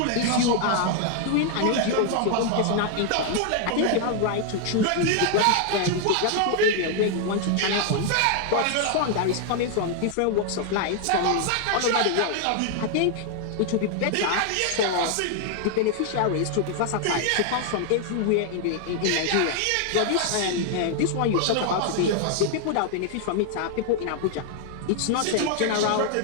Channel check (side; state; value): both; different; correlation 0.00